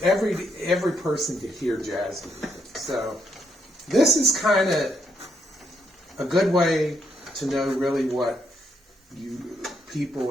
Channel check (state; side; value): normal; both; correlation 0.76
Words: person could hear jazz music. So this is kind of a good way to know really what